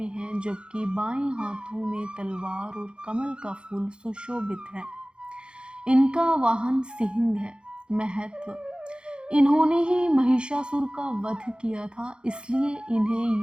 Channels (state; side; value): late; left; 0.052 ms